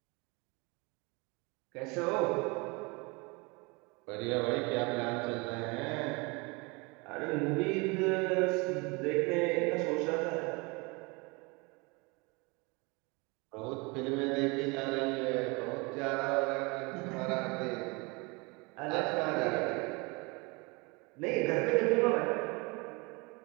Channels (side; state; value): left; quieter; 27.8 dB